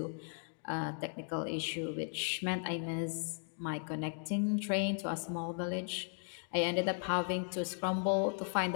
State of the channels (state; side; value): silent; right; 53 dB below the other